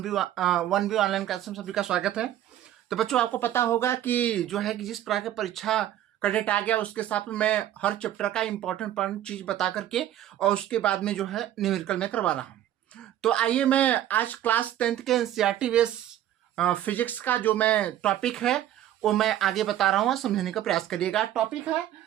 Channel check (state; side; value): quieter; left; 12.2 dB